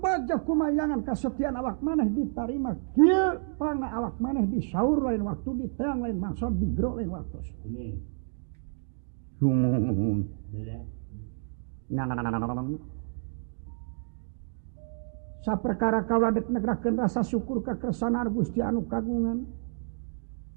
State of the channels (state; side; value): silent; left; digital silence